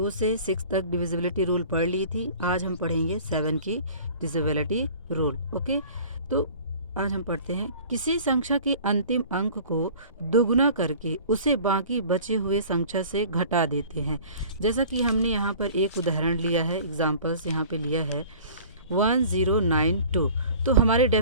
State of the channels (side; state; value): both; inverted; correlation -0.45